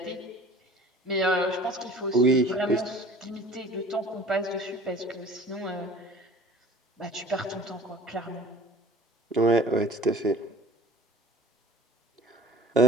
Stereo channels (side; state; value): both; normal; correlation 0.44